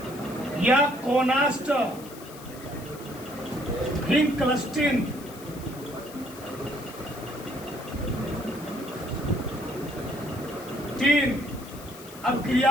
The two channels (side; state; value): left; noise; hiss, 18 dB below the sound